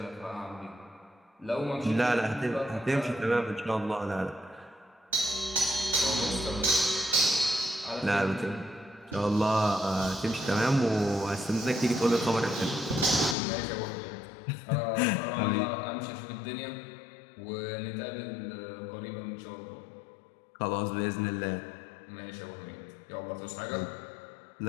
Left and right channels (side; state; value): right; drops out; at 13.4 s